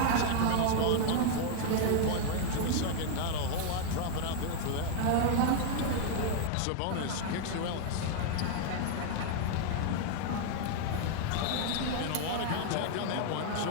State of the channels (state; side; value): different; both; correlation 0.00